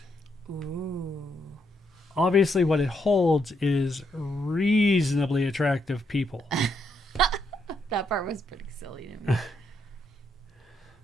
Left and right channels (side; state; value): both; normal; correlation 0.77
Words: Ooh. Obviously, what it holds is reasonably attractive people. That part was pretty silly to me.